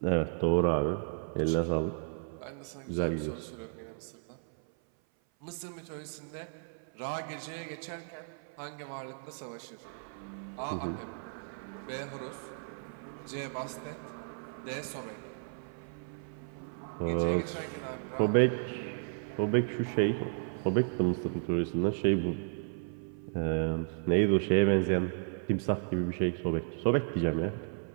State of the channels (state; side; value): silent; left; 55 dB below the other